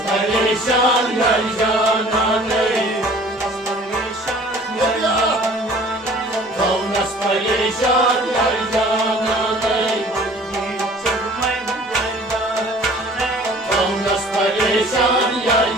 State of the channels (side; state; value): both; normal; correlation 0.49